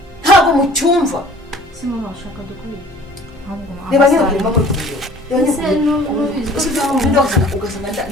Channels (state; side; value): normal; both; correlation 0.50